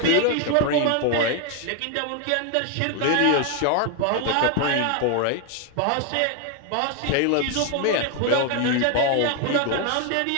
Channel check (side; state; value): both; different; correlation 0.01